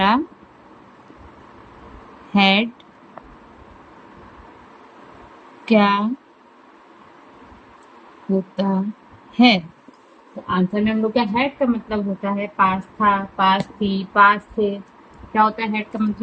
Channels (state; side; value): identical; both; correlation 1.00